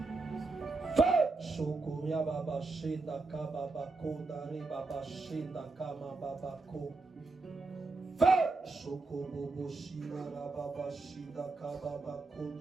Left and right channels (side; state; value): left; quieter; 3.6 dB